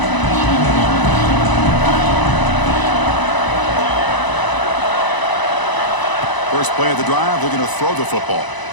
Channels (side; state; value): right; late; 1.0 ms